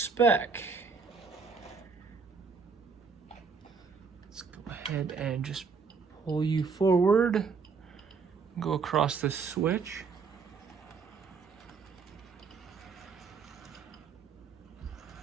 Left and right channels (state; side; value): quieter; left; 5.2 dB